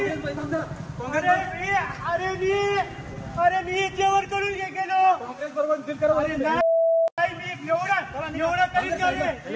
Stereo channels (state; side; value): identical; both; correlation 1.00